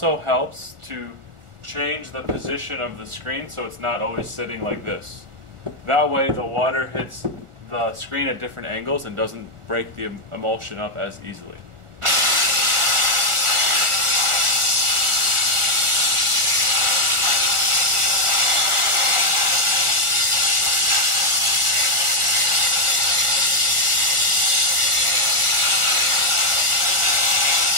helps to change the position of the screen so it's not always sitting like this. That way the water hits the screen at different angles and doesn't break the emulsion up as easily.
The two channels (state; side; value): late; left; 1.4 ms